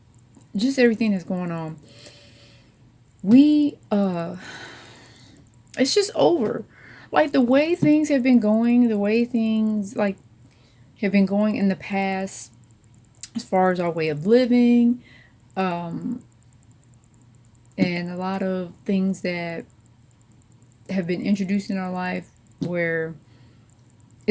just everything that's going on, we, it's just over. Like, the way things have been going, the way things, like, have been going in the past, as far as our way of living, um, and a lot of things that have been introduced in our life where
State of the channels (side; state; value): both; identical; correlation 1.00